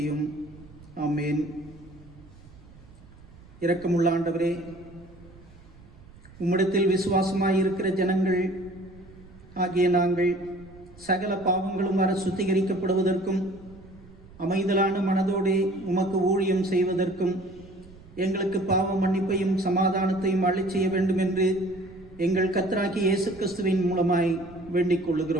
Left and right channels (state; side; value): noise; right; rumble, 22 dB below the sound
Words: ஆமேன். இரக்கமுள்ள ஆண்டவரே, உம்மிடத்தில் விசுவாசமாயிருக்கிற ஜனங்கள் ஆகிய நாங்கள் சகல பாவங்களும் வர சுத்திகரிக்கப்படுவதற்கும் அமைதலான மனதோடே உமக்கு ஊழியம் செய்வதற்கும் எங்களுக்கு பாவ மன்னிப்பையும் சமாதானத்தையும் அளிச் செய்ய வேண்டும் என்று எங்கள் கர்த்தராகிய இயேசு கிறிஸ்துவின் மூலமாய் வேண்டிக்